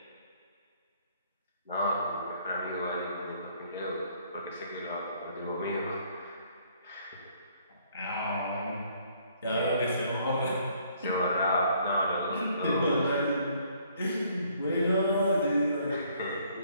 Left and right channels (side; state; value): both; inverted; correlation -0.64